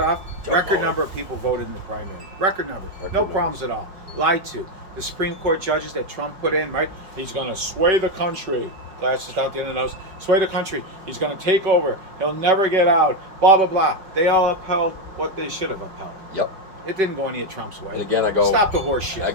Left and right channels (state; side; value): late; left; 5.3 ms